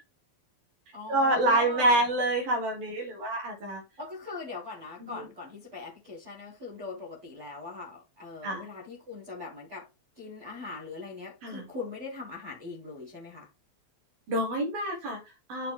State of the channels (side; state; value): left; late; 12 ms